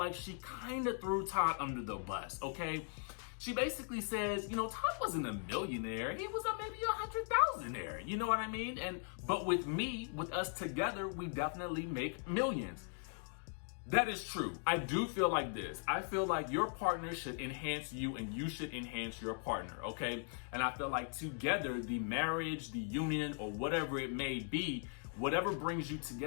she kind of threw Todd under the bus, okay? She basically says, you know, Todd wasn't a millionaire. He was maybe 100,000-aire. You know what I mean? But with me, with us together, we definitely make millions. That is true. I do feel like this. I feel like your partner should enhance you and you should enhance your partner, okay? And I feel like together, the marriage, the union, or whatever it may be, whatever brings you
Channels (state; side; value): silent; right; 52 dB below the other